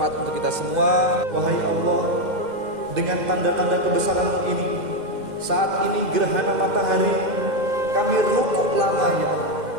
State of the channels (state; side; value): late; left; 2.1 ms